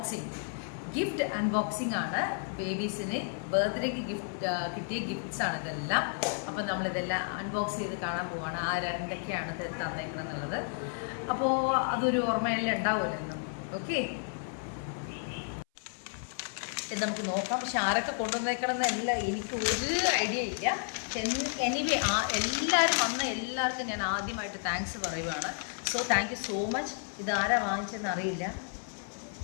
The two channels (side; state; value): right; silent; 56 dB below the other